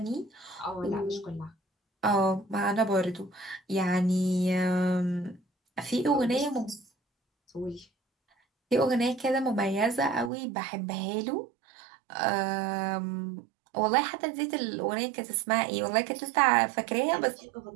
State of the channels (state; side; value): drops out; left; at 10.3 s